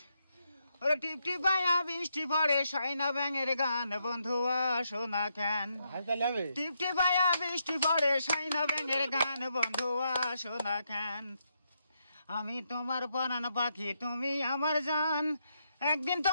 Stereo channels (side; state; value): both; inverted; correlation -0.80